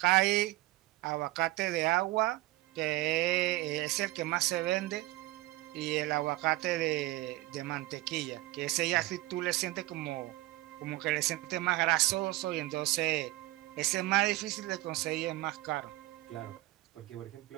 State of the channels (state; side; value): quieter; left; 19.0 dB